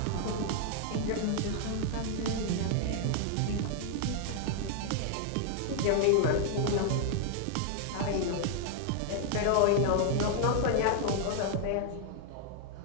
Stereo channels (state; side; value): different; both; correlation 0.00